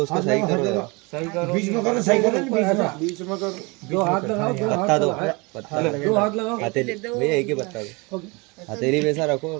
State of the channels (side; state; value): left; quieter; 27.5 dB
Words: उसको सही करो जरा सही करो बीच में करो सही करो बीच में करो दो हाथ लगाओ पत्ता दो पत्ता दो हाथ लगाओ हथेली भैया एक ही पत्ता दो हथेली वैसा रखो